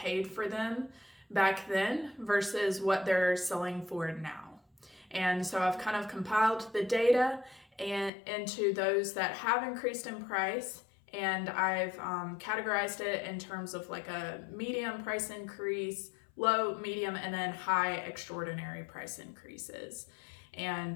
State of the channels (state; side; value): drops out; right; at 8.1 s